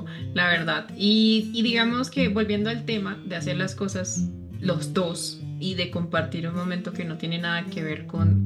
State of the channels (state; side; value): identical; both; correlation 1.00